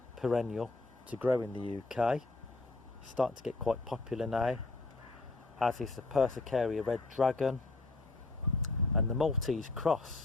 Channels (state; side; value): quieter; right; 3.3 dB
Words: perennial to grow in the UK. Starting to get quite popular now, as is the Persicaria Red Dragon and the Maltese